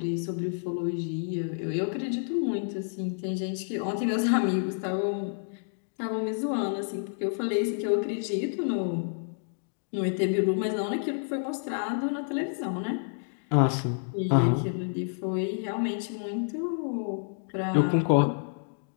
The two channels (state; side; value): silent; right; digital silence